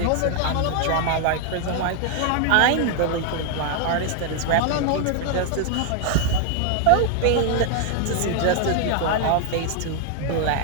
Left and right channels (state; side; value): different; both; correlation 0.01